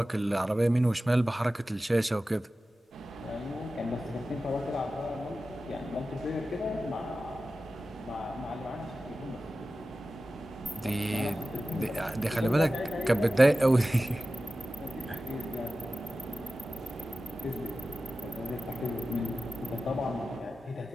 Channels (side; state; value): both; normal; correlation 0.94